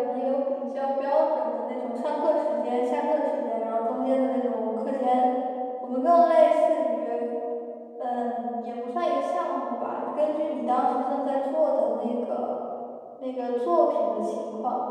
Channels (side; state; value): both; identical; correlation 1.00